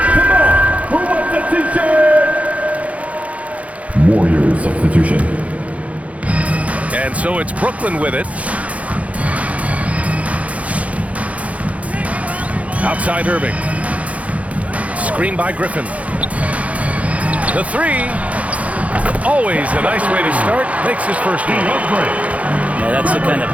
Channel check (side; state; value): left; late; 0.066 ms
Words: Come on, who wants a t-shirt? Warriors substitution. And so it's Brooklyn with it. Outside Irving. Screen by Griffin. The three. Always a nice way to start. Makes his first one. Yeah, that's the kind of